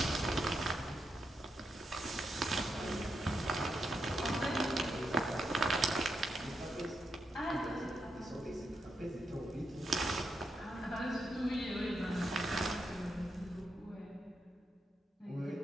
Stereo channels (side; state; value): both; normal; correlation 0.83